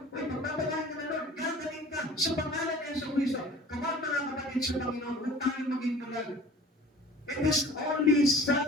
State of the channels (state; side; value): normal; both; correlation 0.45